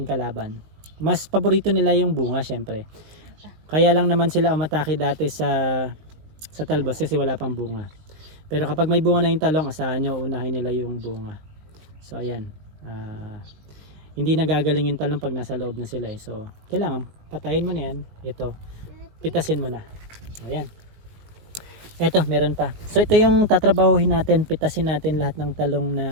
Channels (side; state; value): left; late; 19 ms